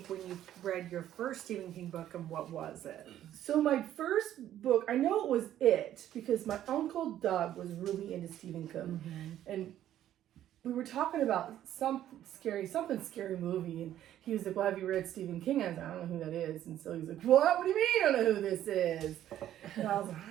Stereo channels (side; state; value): left; quieter; 11.9 dB